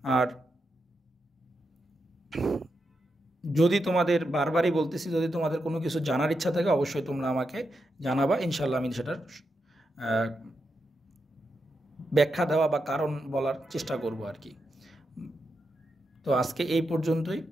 আর যদি তোমাদের বারবারই বলতেছি, যদি তোমাদের কোনো কিছু জানার ইচ্ছা থাকে অবশ্যই তোমরা আমাকে জানাবা, ইনশাল্লাহ আমি সেটার ব্যাখ্যা দেওয়া বা কারণ বলার চেষ্টা করব আর কি। তো আজকে এই পর্যন্তই,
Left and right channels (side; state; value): both; normal; correlation 0.86